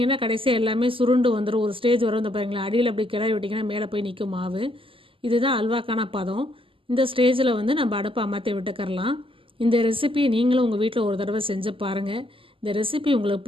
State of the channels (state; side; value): late; left; 0.25 ms